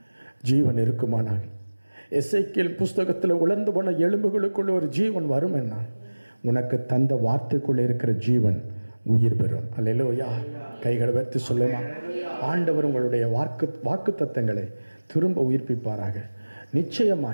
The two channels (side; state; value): both; inverted; correlation -1.00